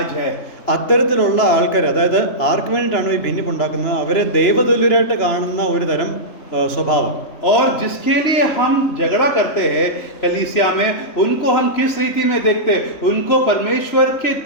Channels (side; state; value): right; late; 3.0 ms